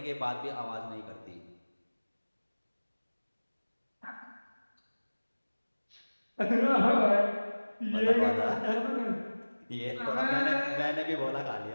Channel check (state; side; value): inverted; both; correlation -1.00